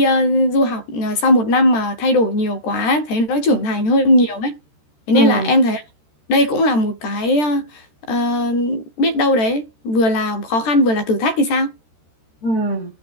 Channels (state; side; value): late; right; 13 ms